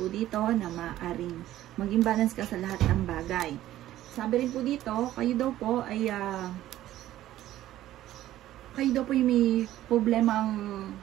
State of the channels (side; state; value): left; quieter; 13.8 dB